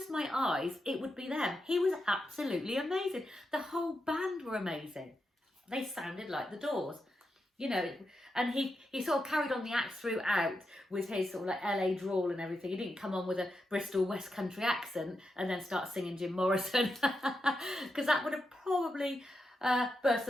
my eyes, it would be them. He was absolutely amazing. The whole band were amazing. They sounded like the Doors, you know, and he sort of carried on the act throughout with his sort of like LA drawl and everything. He didn't come on with a Bristol West Country accent and then start singing Jim Morrison, because that would have probably burst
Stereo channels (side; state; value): both; normal; correlation 0.86